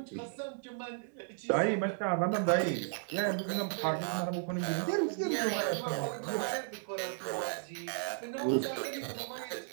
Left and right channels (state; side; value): silent; left; digital silence